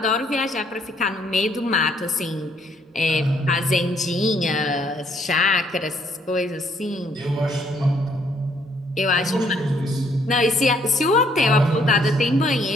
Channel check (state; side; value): normal; both; correlation 0.67